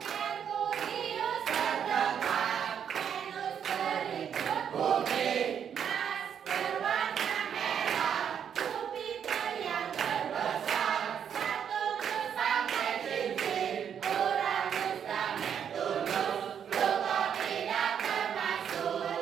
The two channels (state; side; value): quieter; left; 8.2 dB